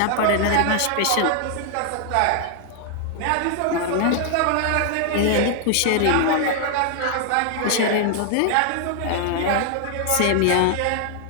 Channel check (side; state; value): both; different; correlation 0.00